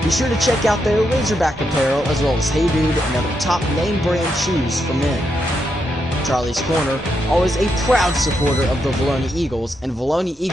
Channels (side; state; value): both; normal; correlation 0.82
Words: Be sure to check out their Razorback apparel as well as Hey Dude and other top name brand shoes for men. Charlie's Corner, always a proud supporter of the Vilonia Eagles and Vilonia